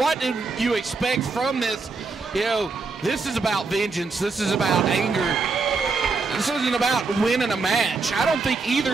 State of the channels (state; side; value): quieter; left; 4.2 dB